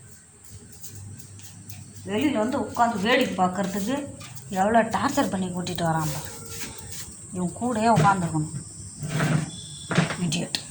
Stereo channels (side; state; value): both; identical; correlation 1.00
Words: வெளியில் வந்து உட்காந்து வேடிக்கை பார்க்குறதுக்கு எவ்வளோ டார்ச்சர் பண்ணி கூட்டிகிட்டு வரான். இவன் கூடயே உட்காந்துருக்கணும்.